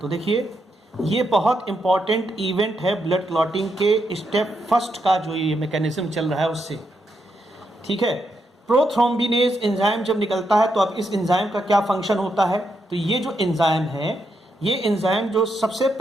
देखिए ये बहुत इंपॉर्टेंट इवेंट है ब्लड क्लॉटिंग के स्टेप फर्स्ट का, जो ये मैकेनिज्म चल रहा है उससे, ठीक है। प्रोथ्रोम्बिनेज एंजाइम जब निकलता है तो अब इस एंजाइम का क्या फंक्शन होता है, तो ये जो एंजाइम है, ये एंजाइम जो सबसे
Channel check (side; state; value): both; normal; correlation 0.81